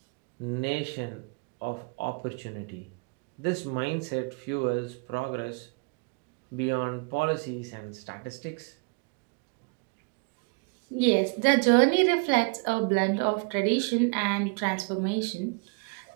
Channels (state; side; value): quieter; left; 33.9 dB